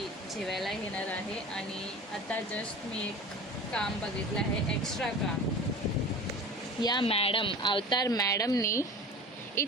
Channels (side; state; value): both; normal; correlation 0.36